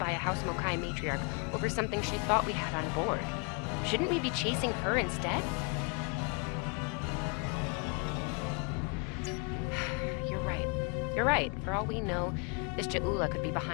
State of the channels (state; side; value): quieter; right; 36.6 dB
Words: a House Mokai matriarch over something she thought we had on board. Shouldn't we be chasing her instead? You're right. You're right. For all we know, this Ja'ula could be